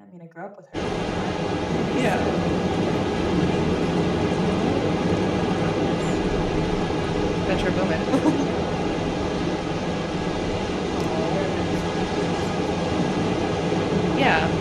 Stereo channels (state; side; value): identical; both; correlation 1.00